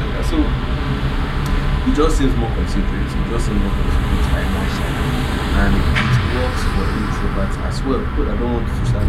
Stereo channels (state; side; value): identical; both; correlation 1.00